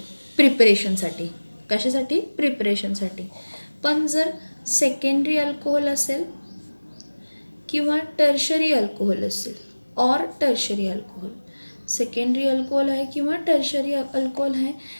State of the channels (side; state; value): both; inverted; correlation -1.00